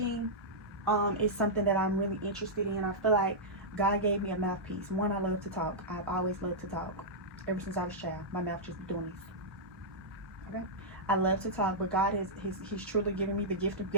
is something that I'm really interested in. I feel like God gave me a mouthpiece. One, I love to talk. I've always loved to talk. Ever since I was a child, my mouth just be doing this. Okay? I love to talk, but God he's truly given me the gift of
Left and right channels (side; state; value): both; normal; correlation -0.10